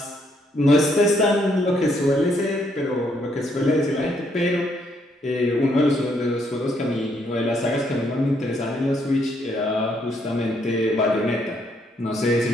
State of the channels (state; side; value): normal; both; correlation 0.72